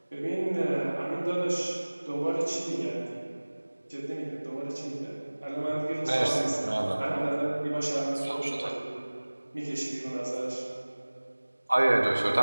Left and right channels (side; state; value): both; inverted; correlation -1.00